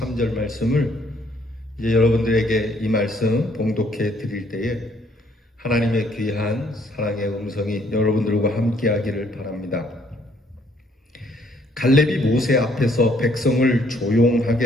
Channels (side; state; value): both; normal; correlation 0.66